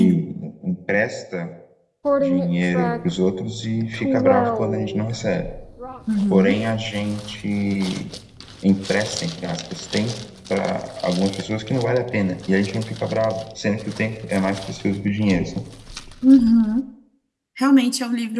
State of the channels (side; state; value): both; identical; correlation 1.00